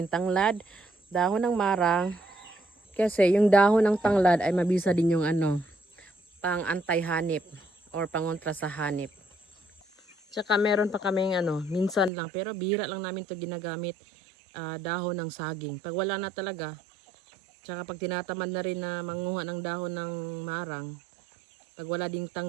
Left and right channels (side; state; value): left; drops out; at 12.1 s